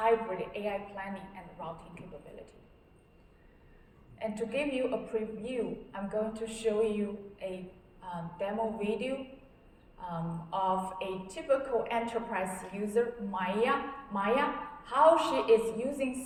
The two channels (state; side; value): identical; both; correlation 1.00